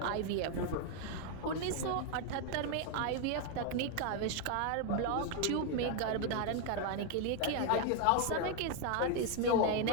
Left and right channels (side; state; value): both; different; correlation 0.01